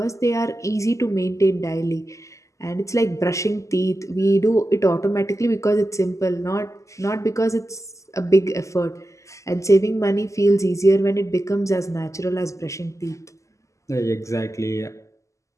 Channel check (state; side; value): late; right; 0.15 ms